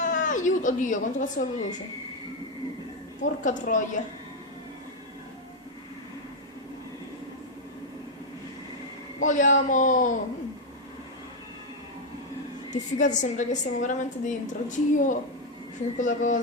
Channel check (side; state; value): both; normal; correlation 0.03